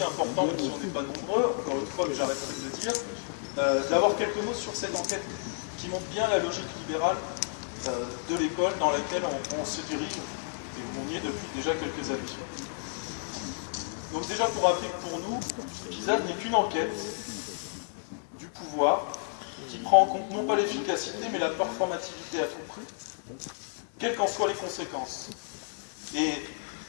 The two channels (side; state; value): right; silent; 57 dB below the other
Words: important, même si on n'est pas nombreux, encore une fois, mais j'arrêterai de le dire, d'avoir quelques mots sur cette enquête qui montre bien la logique libérale de l'école dans laquelle on se dirige, et où on y est depuis déjà quelques années. Donc déjà pour rappeler que pour nous, PISA n'est qu'une enquête du pouvoir qui prend en compte non pas l'efficacité, mais la performativité à tout prix, quelles qu'en soient les conséquences. Et